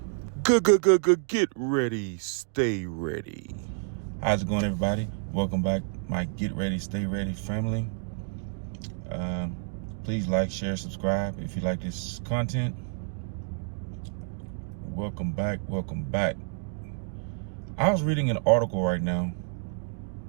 Get ready, stay ready. How's it going, everybody? Welcome back, my Get Ready, Stay Ready family. Please like, share, subscribe if you like this content. Welcome back, welcome back. I was reading an article right now,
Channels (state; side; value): silent; left; digital silence